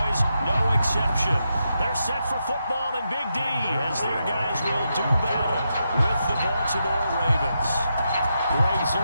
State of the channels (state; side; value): inverted; both; correlation -0.84